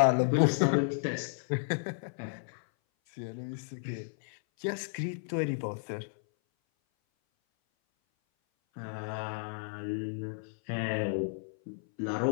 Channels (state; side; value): silent; right; 56 dB below the other